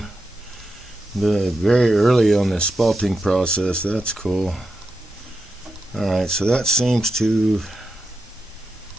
the very early on the spalting process. That's cool. Alright, so that seems to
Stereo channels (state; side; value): normal; both; correlation 0.87